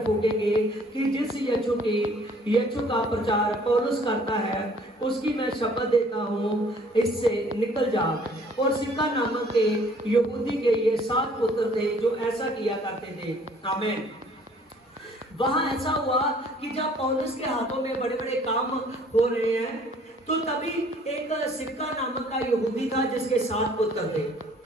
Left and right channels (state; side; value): normal; both; correlation 0.57